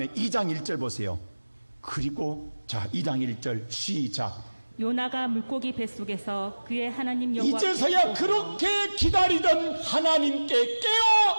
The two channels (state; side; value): inverted; both; correlation -1.00